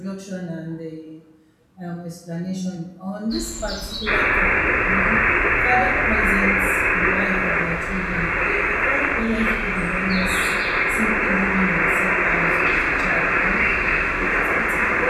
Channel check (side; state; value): both; identical; correlation 1.00